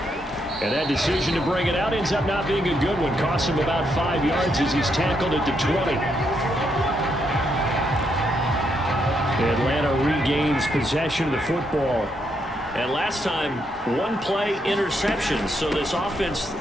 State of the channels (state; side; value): normal; both; correlation 0.77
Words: And that decision to bring it out ends up not being a good one. Costs him about 5 yards as he's tackled at the 20. Atlanta regains possession of the football. And last time, 1 play interception. So this offense,